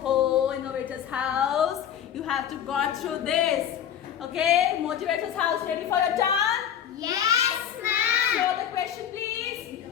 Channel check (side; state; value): right; quieter; 9.5 dB